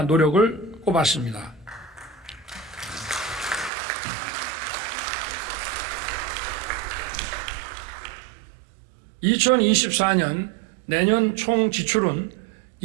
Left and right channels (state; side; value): drops out; left; at 3.7 s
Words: 노력을 꼽았습니다. (2024년) 내년 총 지출은